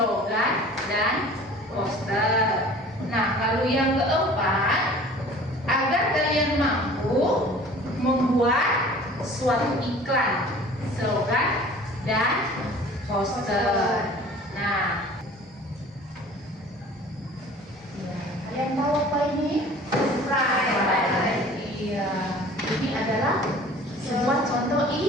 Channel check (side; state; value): both; normal; correlation 0.46